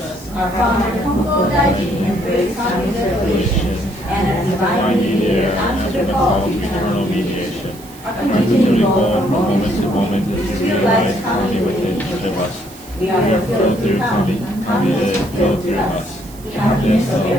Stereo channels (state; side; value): noise; right; hiss, 21 dB below the sound